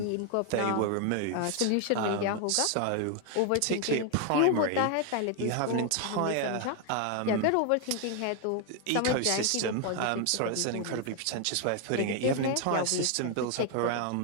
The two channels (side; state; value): both; different; correlation 0.00